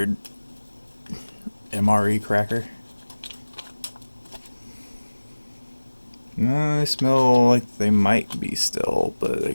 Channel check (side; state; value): both; inverted; correlation -1.00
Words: MRE cracker. No, they smell like they might be still, but they